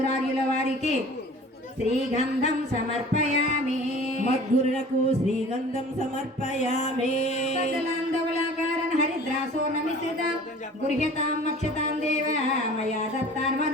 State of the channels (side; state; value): both; normal; correlation 0.45